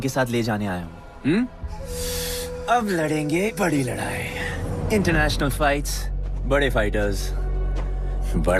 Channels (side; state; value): both; identical; correlation 1.00